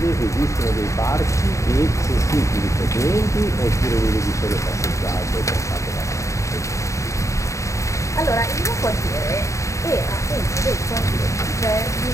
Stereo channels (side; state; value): right; late; 0.15 ms